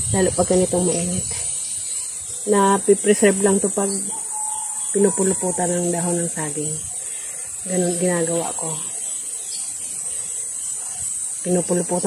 Lalo pag ganitong mainit. Na pipreserve lang to pag pinupuluputan ng dahon ng saging. Ganun ginagawa ko.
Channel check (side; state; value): both; identical; correlation 1.00